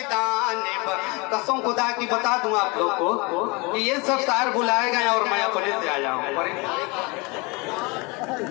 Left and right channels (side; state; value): right; quieter; 27.6 dB